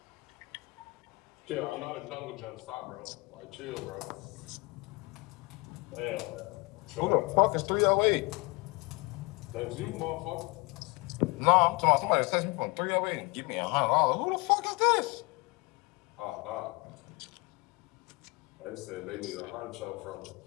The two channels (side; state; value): right; quieter; 25.8 dB